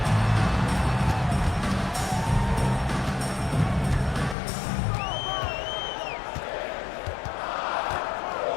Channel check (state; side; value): drops out; right; at 4.4 s